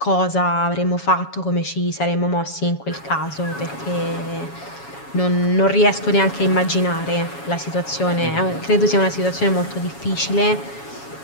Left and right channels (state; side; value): late; right; 7.2 ms